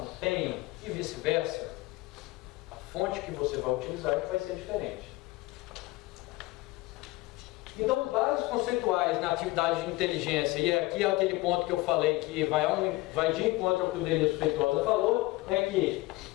tenham, e vice-versa. A fonte que você vai utilizar vai ser diferente. Então, bases conceituais na atividade de inteligência, e aqui é aquele ponto que eu falei que vai de encontro ao que o Denilson Feitosa falou, é que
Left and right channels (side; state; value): right; quieter; 20.4 dB